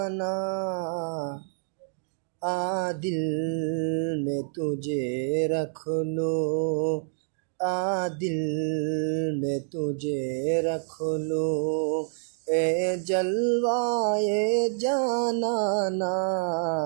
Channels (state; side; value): silent; left; 60 dB below the other